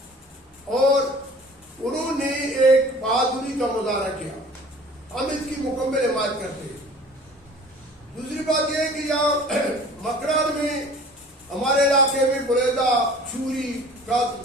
اور انہوں نے ایک بہادری کا مظاہرہ کیا. ہم اس کی مکمل حمایت کرتے ہیں. دوسری بات یہ ہے کہ یہاں مکران میں ہمارے علاقے میں بریدہ, چوری,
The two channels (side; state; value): both; normal; correlation 0.46